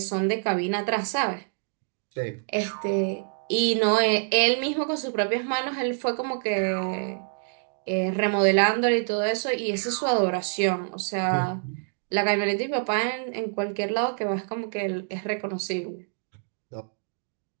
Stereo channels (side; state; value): left; silent; digital silence